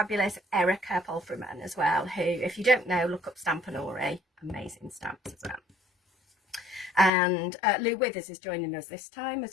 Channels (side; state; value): right; drops out; at 7.1 s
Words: Erica Polfreman as well, who, if you don't know, look up Stampanori, amazing stamps as well. And Lou Withers is joining us this time